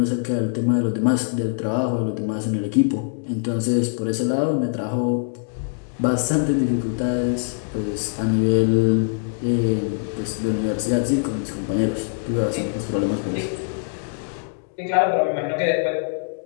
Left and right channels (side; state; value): right; silent; digital silence